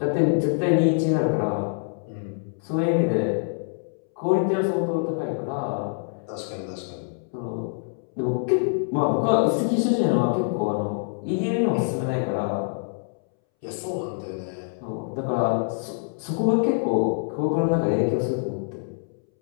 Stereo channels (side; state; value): right; silent; 62 dB below the other